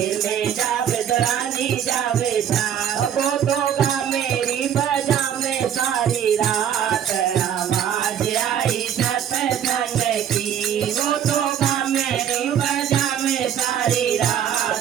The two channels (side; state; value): left; quieter; 9.3 dB